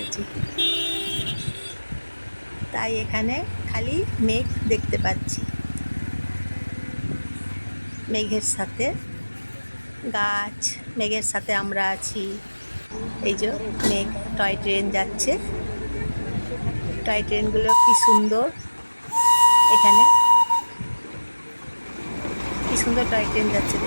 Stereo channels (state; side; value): inverted; both; correlation -1.00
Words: তাই এখানে খালি মেঘ দেখতে পাচ্ছি। মেঘের সাথে গাছ, মেঘের সাথে আমরা আছি। এই যে মেঘ, টয় ট্রেন যাচ্ছে। টয় ট্রেনগুলো কি সুন্দর, এখানে কি সুন্দর টয় ট্রেন যাচ্ছে